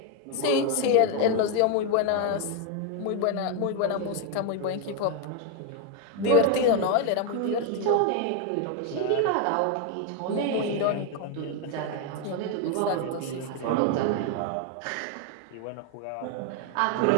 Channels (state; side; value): different; both; correlation 0.01